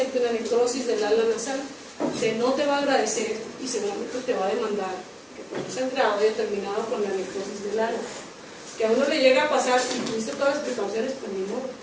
una necrosis del ala nasal, no te va a agradecer y seguramente te va a demandar que por un sangrado haya terminado con la necrosis del ala. Que a uno le llega a pasar y tuviste todas las precauciones, pues ni modo,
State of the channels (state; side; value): identical; both; correlation 1.00